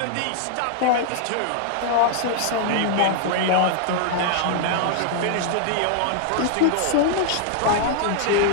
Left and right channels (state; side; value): different; both; correlation 0.00